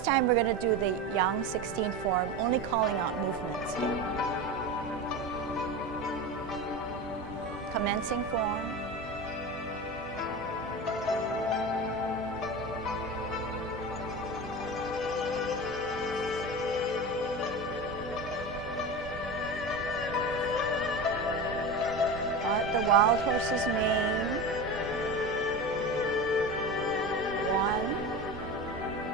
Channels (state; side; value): normal; both; correlation 0.26